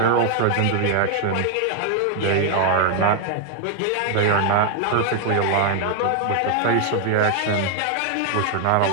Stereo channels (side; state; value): both; different; correlation 0.00